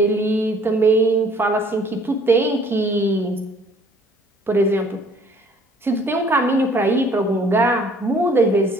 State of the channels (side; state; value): both; normal; correlation 0.57